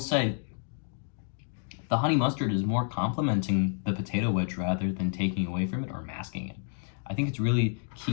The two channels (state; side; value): silent; right; 58 dB below the other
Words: the honey mustard is more complementing the potato wedge rather than taking away from it or masking it. I think it's really